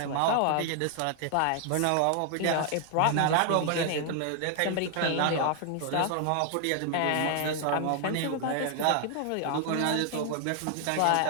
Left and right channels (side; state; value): both; different; correlation 0.00